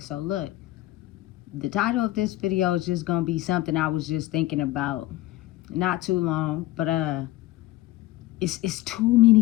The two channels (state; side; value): quieter; right; 16.5 dB